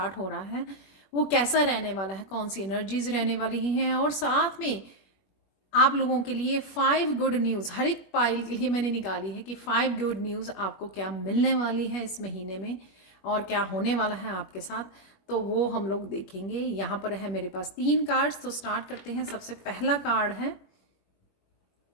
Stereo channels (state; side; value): late; right; 21 ms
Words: हो रहा है, वो कैसा रहने वाला है, कौन सी एनर्जीज रहने वाली हैं। और साथ में आप लोगों के लिए 5 गुड न्यूज़, हर एक पाइल के लिए मैंने निकाली है कि 5 गुड न्यूज़ आपको क्या मिलने वाली है इस महीने में और क्या होने वाला है आपके साथ। तो वो हम लोग देखेंगे। यहाँ पर है मेरे पास 3 कार्ड्स, तो स्टार्ट करते हैं। सबसे पहला कार्ड है